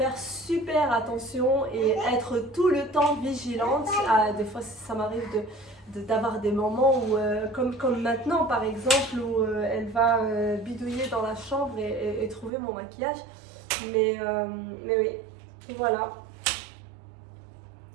super attention et être tout le temps vigilante. Des fois, ça m'arrive d'avoir des moments où, comme maintenant par exemple, où elle va bidouiller dans la chambre et trouver mon maquillage. Mais oui, voilà.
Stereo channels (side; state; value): left; drops out; at 12.5 s